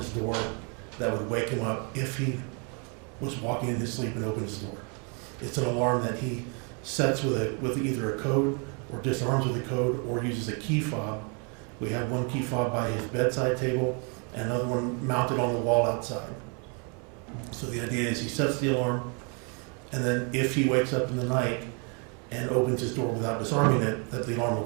door that would wake him up if he was walking in his sleep and opened his door. It's an alarm that he sets with either a code or disarms with a code or uses a key fob. We have one key fob by his bedside table and another one mounted on the wall outside. So the idea is he sets the alarm, and then if he wakes up in the night and opens his door without disarming it, that the alarm will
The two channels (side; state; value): left; quieter; 36.2 dB